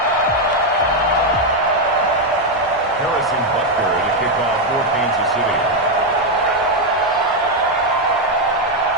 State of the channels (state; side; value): normal; both; correlation 0.03